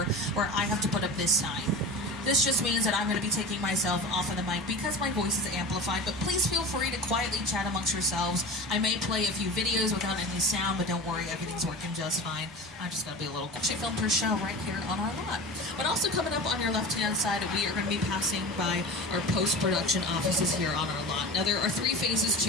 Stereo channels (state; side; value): normal; both; correlation 0.31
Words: where I have to put up this sign. This just means that I'm going to be taking myself off of the mic because my voice is amplified, but please feel free to quietly chat amongst yourselves. I may play a few videos without any sound, but don't worry, everything's working just fine. I just got to be a little... She filmed her show right here on our lot. But also coming up on your left-hand side, we are going to be passing by our post-production offices here on our lot. Now, there are 3 phases